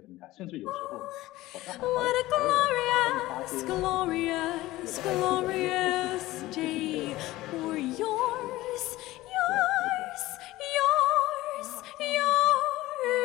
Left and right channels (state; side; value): quieter; right; 17.5 dB